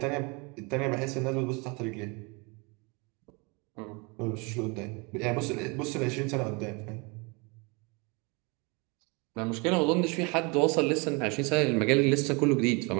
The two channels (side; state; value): left; quieter; 29.5 dB